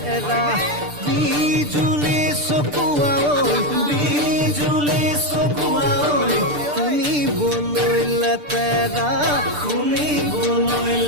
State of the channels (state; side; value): late; left; 6.8 ms